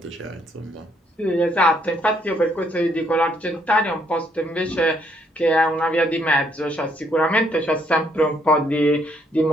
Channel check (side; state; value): both; normal; correlation 0.70